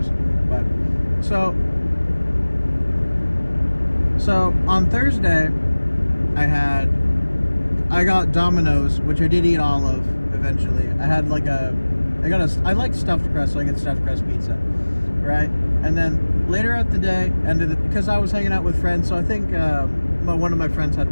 But so on Thursday I got Domino's, which I did eat all of eventually. I like stuffed crust, so I get stuffed crust pizza, right? And then later out the day, because I was hanging out with friends, so I think one of my friends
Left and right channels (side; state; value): both; inverted; correlation -1.00